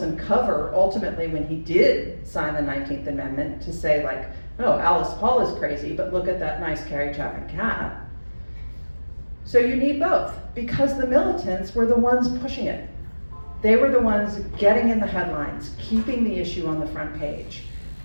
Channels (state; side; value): inverted; both; correlation -1.00